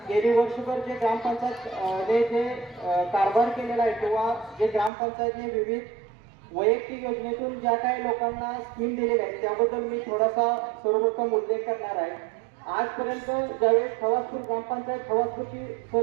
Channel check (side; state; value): left; drops out; at 4.9 s